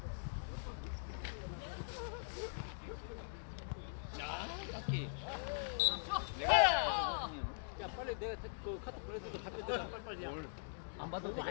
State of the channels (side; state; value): right; silent; digital silence